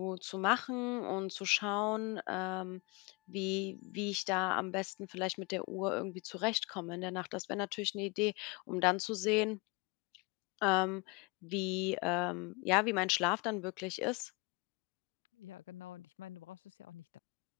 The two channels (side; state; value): right; quieter; 28.3 dB